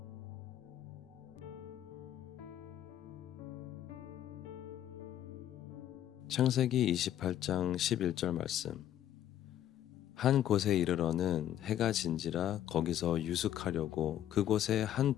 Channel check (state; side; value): quieter; right; 11.5 dB